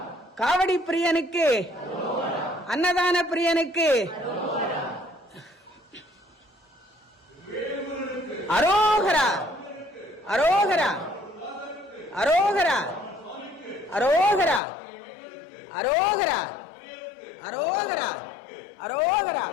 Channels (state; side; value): drops out; right; at 14.6 s